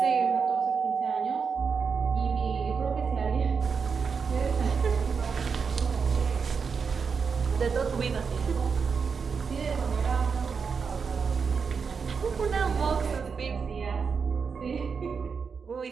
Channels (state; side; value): quieter; left; 5.7 dB